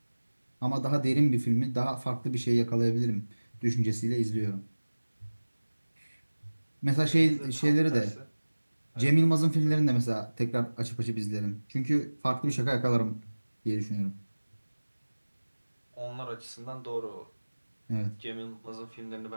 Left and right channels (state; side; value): inverted; both; correlation -1.00